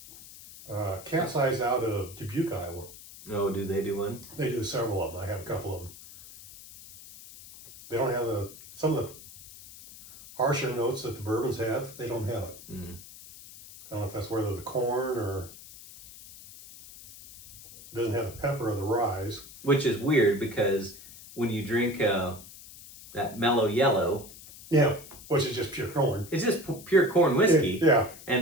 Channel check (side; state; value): left; noise; hiss, 17 dB below the sound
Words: it was. Capsize out of Dubuque, Iowa. Oh, do they do one? They do several of them. I have a couple of them. They don't have some of the harsher notes that the bourbons have. They don't have it. I don't know if that's whether the corn or it doesn't have the pepper or the rye. Which is weird because when you drink that mellow yellow, which is just pure corn. It's just pure corn whiskey. Yeah.